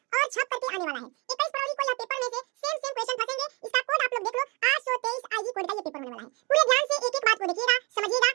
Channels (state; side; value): quieter; left; 27.7 dB